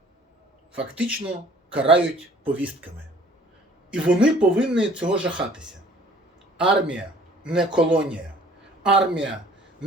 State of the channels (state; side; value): normal; both; correlation 0.54